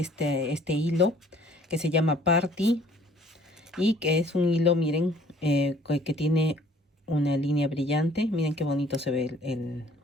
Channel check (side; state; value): both; normal; correlation 0.56